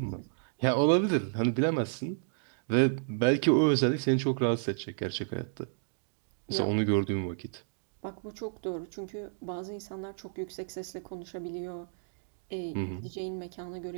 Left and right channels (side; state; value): left; silent; digital silence